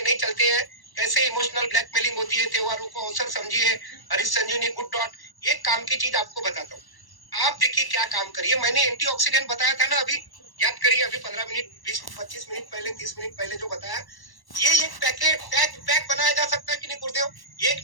नहीं चलते हैं, कैसे इमोशनल ब्लैकमेलिंग होती है। त्योहारों को अवसर समझिए। हरीश संजीवनी गुड डॉट, एक काम की चीज आपको बताता हूँ। आप देखिए क्या काम करिए। मैंने एंटीऑक्सीडेंट बताया था ना अभी, याद करिए अभी 15 मिनट 20-25 मिनट पहले, 30 मिनट पहले जो बताया। ये एक पैकेट पैक बनाया जा सकता है कि नहीं गुरुदेव? एक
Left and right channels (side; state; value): right; late; 1.1 ms